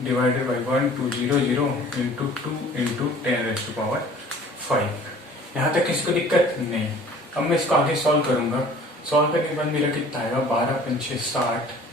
divided by 1200 into 2 into 10⁵। यहाँ तक किसी को दिक्कत नहीं। अब मैं इसको आगे सॉल्व करूंगा, सॉल्व करने के बाद मेरा कितना आएगा 12 पंचे 60,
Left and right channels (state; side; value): normal; both; correlation 0.49